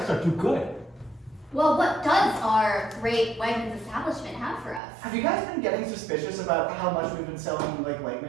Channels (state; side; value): drops out; left; at 4.8 s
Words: are too good. Well, what does our great Wegmans establishment have for us? Have you guys been getting suspicious about how much we've been selling like